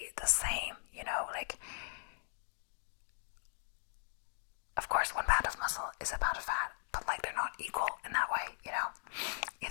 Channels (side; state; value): right; silent; digital silence